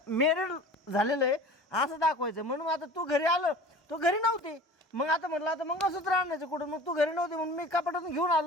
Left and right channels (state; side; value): normal; both; correlation 0.40